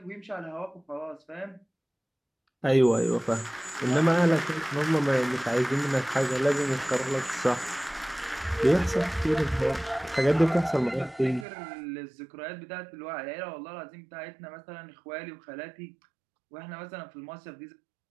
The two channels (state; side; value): drops out; left; at 11.5 s